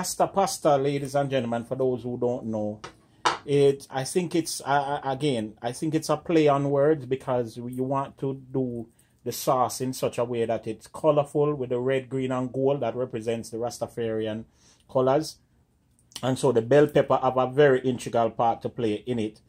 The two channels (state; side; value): identical; both; correlation 1.00